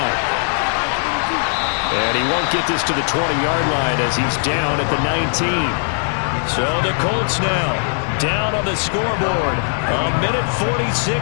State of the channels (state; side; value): silent; right; 67 dB below the other